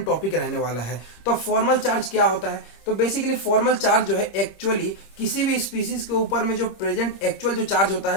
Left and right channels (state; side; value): late; right; 26 ms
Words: टॉपिक रहने वाला है। तो फॉर्मल चार्ज क्या होता है? तो बेसिकली फॉर्मल चार्ज जो है एक्चुअली किसी भी स्पीसीज के ऊपर में जो प्रेजेंट एक्चुअल जो चार्ज होता